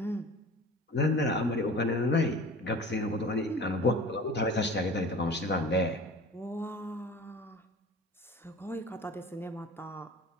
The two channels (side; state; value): both; normal; correlation 0.41